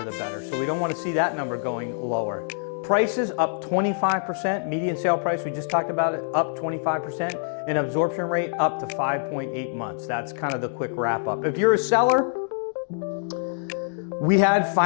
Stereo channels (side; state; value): right; silent; digital silence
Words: the better. So we don't want to see that number going lower. Prices up 25%, median sale price, we just talked about it, up 25%, and absorption rate up to 5.8 months. That's kind of the quick wrap up. If you're a seller, we had